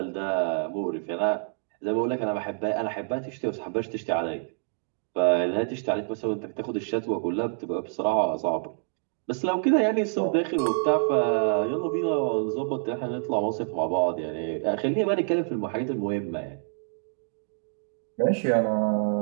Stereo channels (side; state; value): left; silent; digital silence